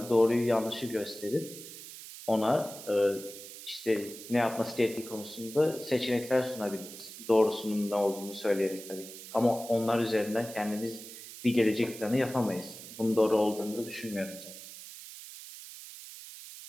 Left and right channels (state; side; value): noise; right; hiss, 14 dB below the sound